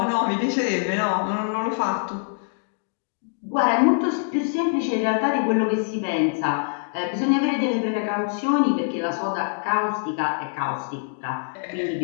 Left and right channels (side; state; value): right; silent; digital silence